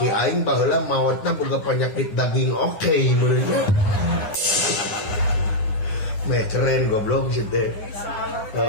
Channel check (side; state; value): right; late; 10 ms